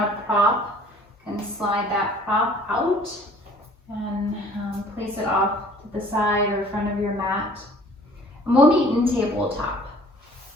a prop, you can slide that prop out and place it off to the side or front of your mat. And we'll meet in tabletop.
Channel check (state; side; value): normal; both; correlation 0.53